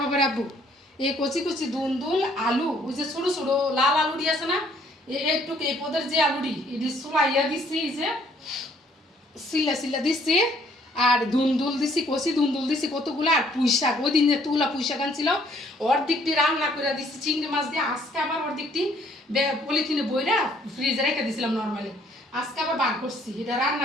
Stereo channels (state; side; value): normal; both; correlation 0.63